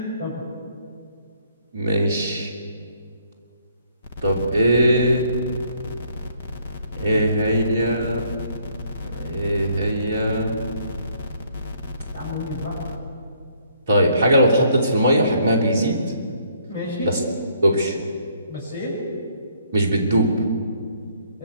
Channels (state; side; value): inverted; both; correlation -0.66